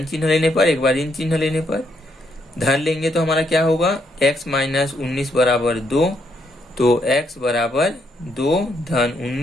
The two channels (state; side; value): normal; both; correlation 0.75